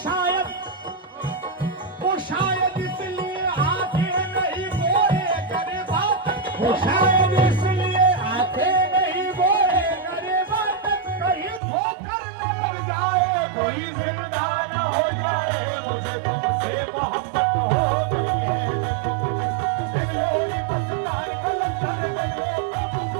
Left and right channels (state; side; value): drops out; left; at 11.6 s